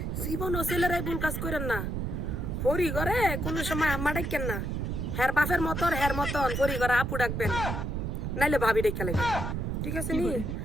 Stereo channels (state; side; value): noise; right; rumble, 2 dB below the sound